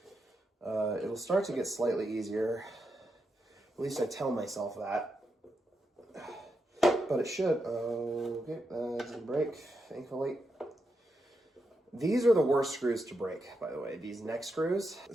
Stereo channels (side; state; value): both; normal; correlation 0.85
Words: it'll start to get slightly easier. At least I tell myself that. But it should. Okay, that didn't break, thankfully. These are the worst screws to break, by the way, these neck screws.